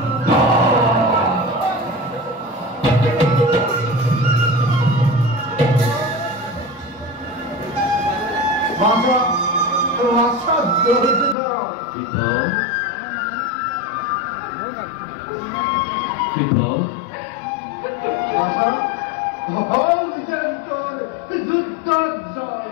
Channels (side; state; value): right; drops out; at 11.4 s